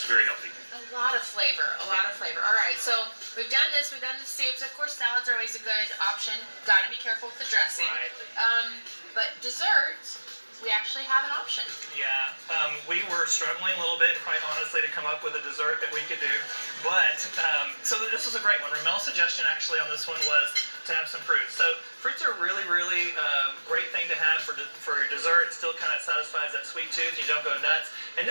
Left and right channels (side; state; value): both; inverted; correlation -1.00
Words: very healthy. A lot of flavor, All right, so we've done this. We've done the soups. Of course, salads are always a good option. Got to be careful with the dressing. Right. But desserts, we actually have an option. Yeah, we were struggling a little bit, quite honestly, to come up with a dessert that we could do. But, so this was a great one. Ramel's suggestion actually on this one was to have some fruits. So fruits are really, really great thing to have for your dessert. It still kind of satisfies that sweet tooth. You don't go nuts. And